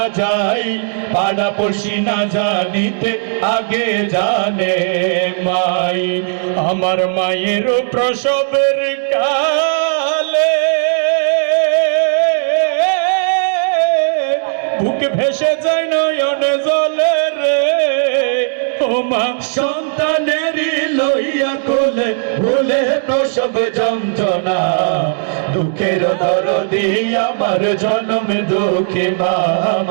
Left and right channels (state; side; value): silent; left; 62 dB below the other